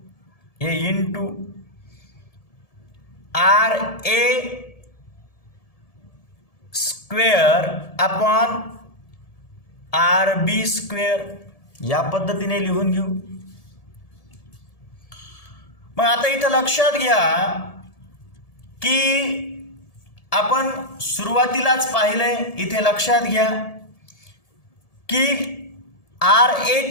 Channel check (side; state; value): right; late; 1.7 ms